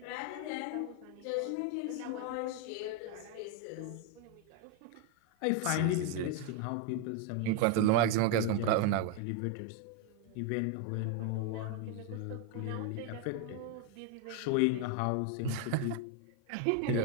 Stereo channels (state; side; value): different; both; correlation 0.01